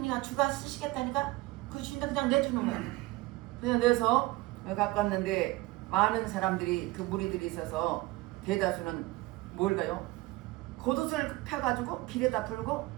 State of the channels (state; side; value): quieter; left; 20.3 dB